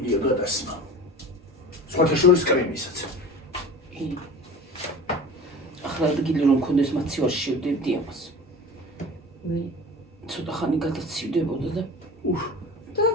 გადასმა. სხვათა შორის კრემისაც. ახლა ადგილი რომ მქონდეს მაცივარში შევდებდი ამას. ცოტა ხანი გადაცივდებოდა და და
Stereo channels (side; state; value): both; normal; correlation 0.37